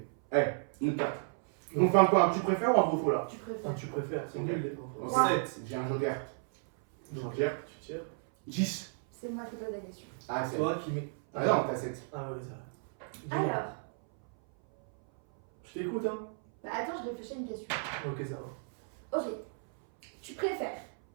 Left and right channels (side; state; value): left; silent; 56 dB below the other